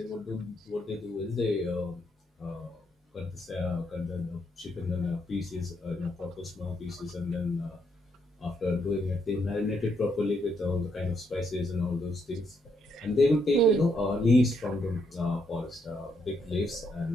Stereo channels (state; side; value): normal; both; correlation 0.76